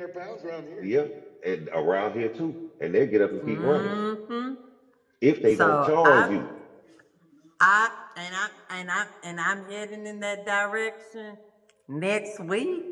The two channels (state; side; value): identical; both; correlation 1.00